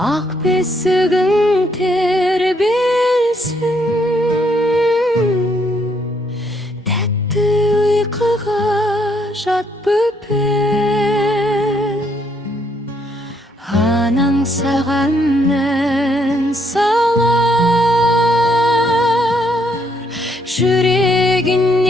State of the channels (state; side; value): normal; both; correlation 0.71